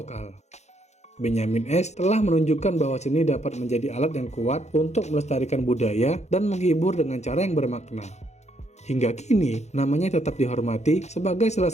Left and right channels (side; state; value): right; late; 0.33 ms